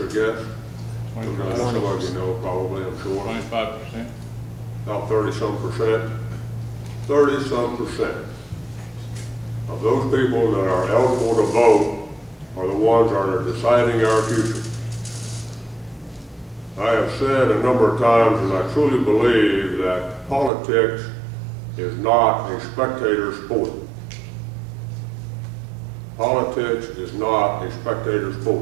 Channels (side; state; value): left; drops out; at 20.5 s